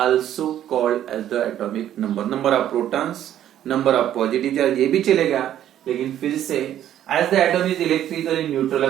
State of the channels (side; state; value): left; quieter; 11.3 dB